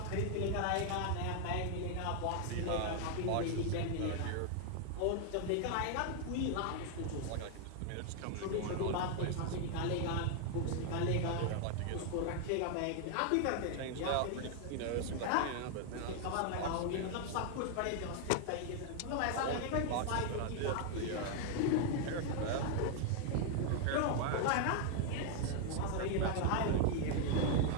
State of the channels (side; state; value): both; different; correlation 0.00